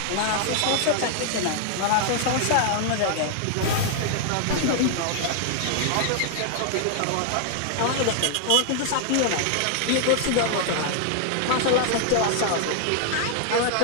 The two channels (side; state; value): both; different; correlation 0.00